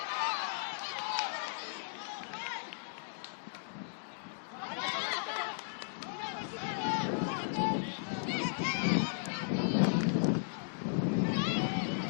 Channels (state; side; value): silent; right; digital silence